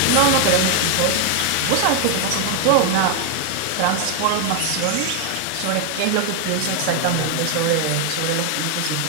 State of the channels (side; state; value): both; different; correlation 0.01